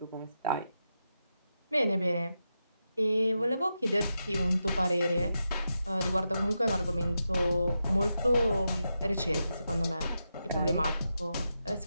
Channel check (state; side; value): inverted; both; correlation -0.87